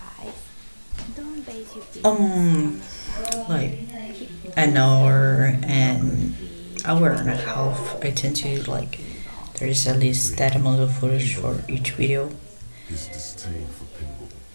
Um, like an hour and a half. I tend to like there is at least that amount of footage for each video.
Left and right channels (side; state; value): both; inverted; correlation -1.00